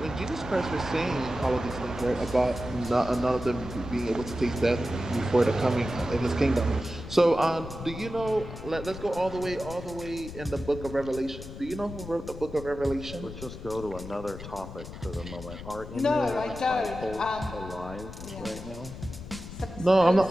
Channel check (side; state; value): left; noise; rumble, 12 dB below the sound